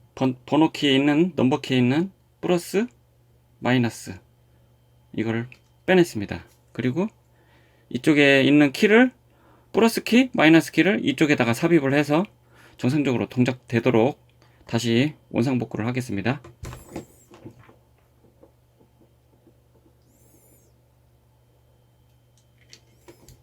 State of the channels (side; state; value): both; identical; correlation 1.00